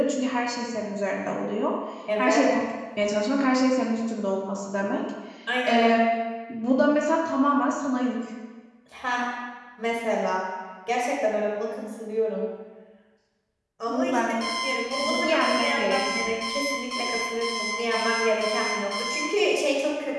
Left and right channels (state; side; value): identical; both; correlation 1.00